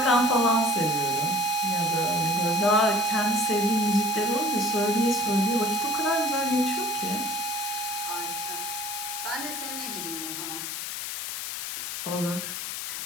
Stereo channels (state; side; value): noise; left; hiss, 5 dB below the sound